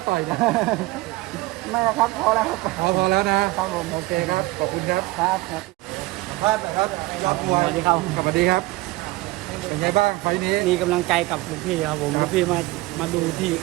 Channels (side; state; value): left; quieter; 20.8 dB